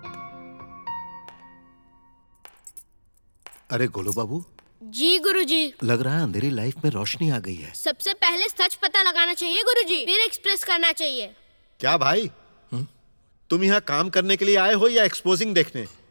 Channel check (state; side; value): inverted; both; correlation -1.00